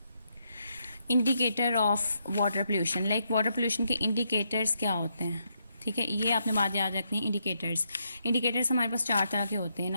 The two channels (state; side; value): inverted; both; correlation -0.78